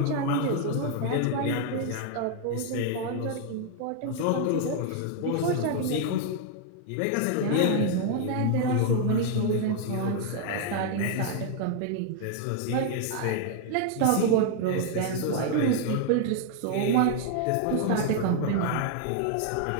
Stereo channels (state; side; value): different; both; correlation 0.00